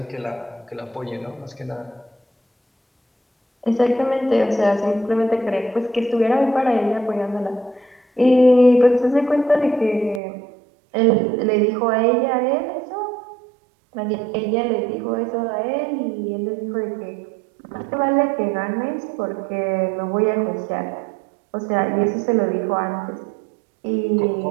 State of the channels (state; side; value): drops out; left; at 10.2 s